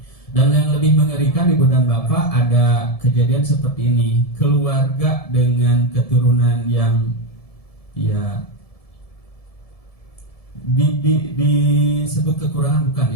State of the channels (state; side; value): late; right; 1.7 ms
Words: Dan yang lebih mengerikan Ibu dan Bapak, ada kejadian seperti ini. Keluarga dengan keturunan yang ya disebut kekurangan bukan